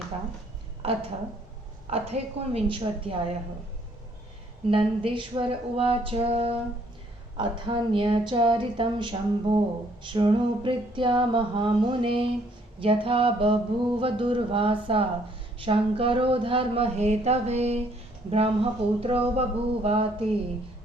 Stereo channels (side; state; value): both; normal; correlation 0.65